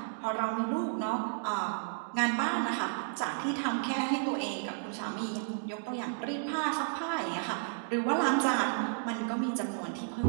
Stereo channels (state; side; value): silent; left; digital silence